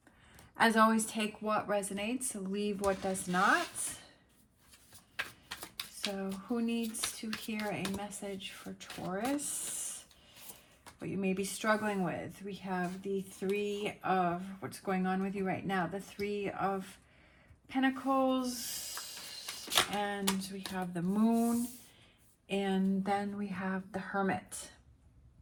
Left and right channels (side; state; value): both; identical; correlation 1.00